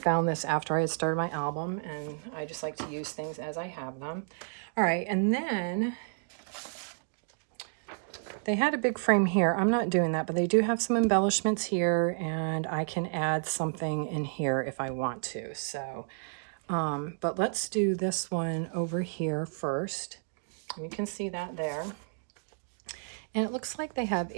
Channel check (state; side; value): silent; left; digital silence